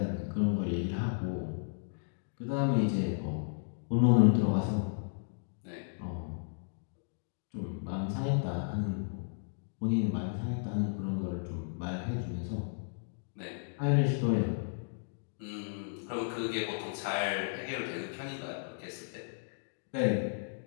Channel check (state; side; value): silent; right; digital silence